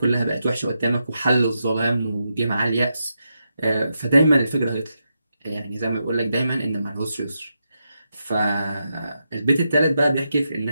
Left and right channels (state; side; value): inverted; both; correlation -0.85